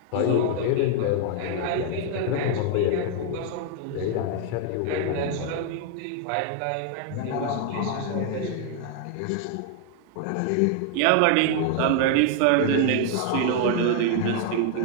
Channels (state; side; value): different; both; correlation 0.00